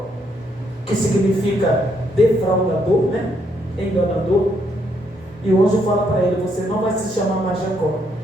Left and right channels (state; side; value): normal; both; correlation 0.73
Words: Que significa defraudador, né? Enganador. E o anjo fala para ele, você não vai se chamar mais Jacó.